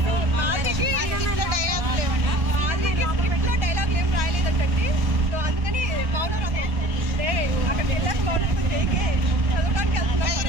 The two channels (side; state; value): left; late; 1.4 ms